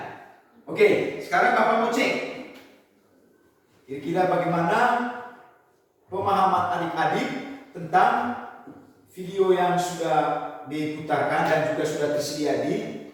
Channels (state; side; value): identical; both; correlation 1.00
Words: Oke, sekarang Bapak mau cek kira-kira bagaimana pemahaman adik-adik tentang video yang sudah diputarkan dan juga sudah tersedia di